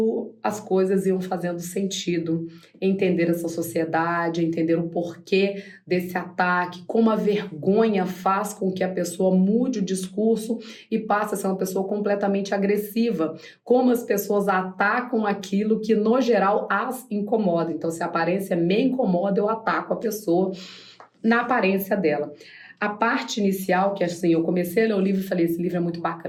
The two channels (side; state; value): both; identical; correlation 1.00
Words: as coisas iam fazendo sentido, entender essa sociedade, entender o porquê desse ataque, como a vergonha faz com que a pessoa mude o discurso e passe a ser uma pessoa completamente agressiva, como as pessoas atacam aquilo que no geral as incomoda. Então, se a aparência me incomoda, eu ataco a pessoa na aparência dela. A parte inicial, que assim, eu comecei a ler o livro e falei, esse livro é muito